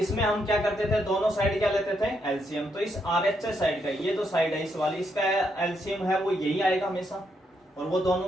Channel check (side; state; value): both; normal; correlation 0.78